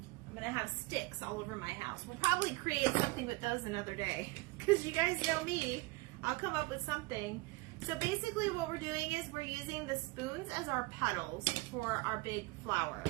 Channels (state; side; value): quieter; left; 23.4 dB